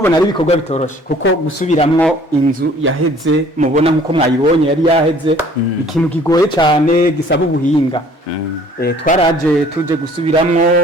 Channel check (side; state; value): both; normal; correlation 0.54